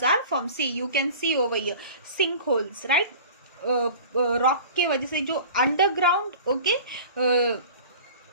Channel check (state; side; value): inverted; both; correlation -0.40